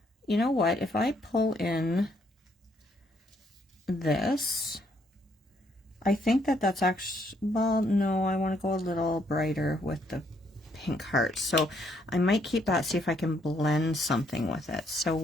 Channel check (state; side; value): normal; both; correlation 0.71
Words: you know what, if I pull in this, I think that's actually, well, no, I want to go a little brighter with the pink heart. So I might keep that, see if I can blend something with it. So